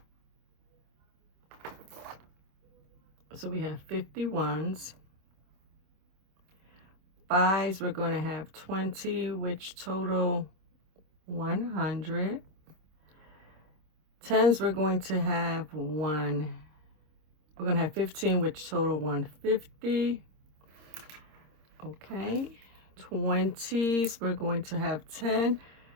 So we have 51s. 5s, we're going to have 20, which total 100. 10s, we're going to have 1. We're going to have 15, which total 150. Okay. 20s, we're going to have 10,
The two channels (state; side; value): late; left; 26 ms